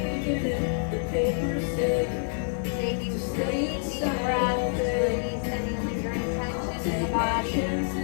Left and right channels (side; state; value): right; silent; digital silence